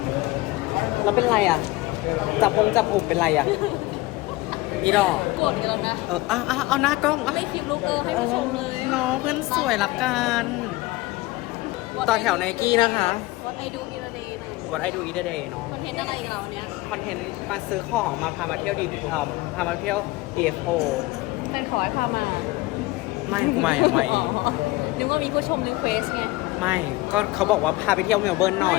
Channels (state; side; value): quieter; right; 20.4 dB